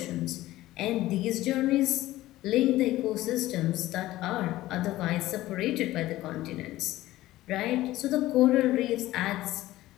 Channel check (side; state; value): right; quieter; 16.2 dB